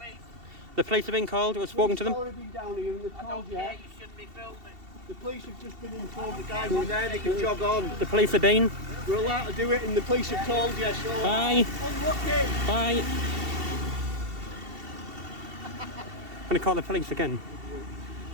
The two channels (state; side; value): late; left; 2.7 ms